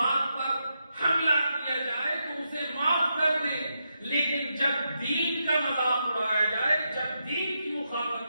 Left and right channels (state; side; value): inverted; both; correlation -0.84